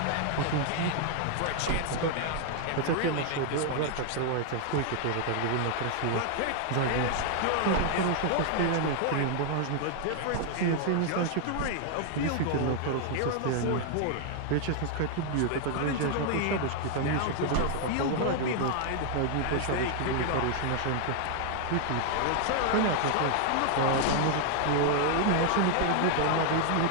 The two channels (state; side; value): different; both; correlation 0.00